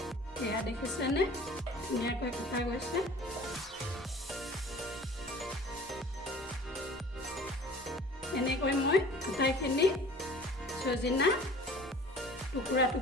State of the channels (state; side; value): normal; both; correlation 0.46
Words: এয়া দেখিছেনে, ধুনীয়াকৈ কটা গৈছে। এনেকৈ মই আটাইখিনি সজিনা টুকুৰা